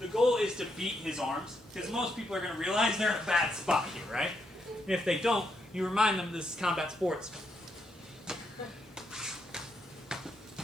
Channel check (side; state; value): both; normal; correlation 0.79